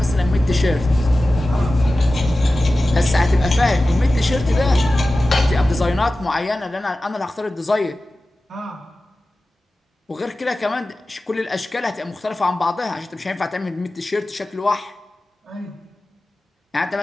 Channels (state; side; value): normal; both; correlation 0.95